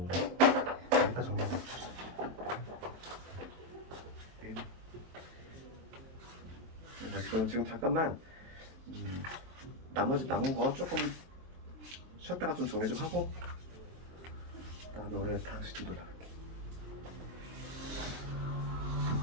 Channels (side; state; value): left; late; 23 ms